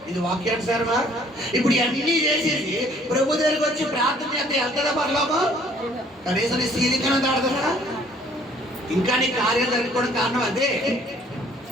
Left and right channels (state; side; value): normal; both; correlation 0.59